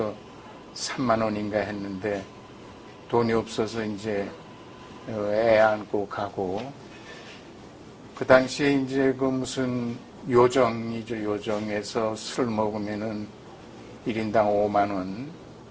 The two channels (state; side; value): identical; both; correlation 1.00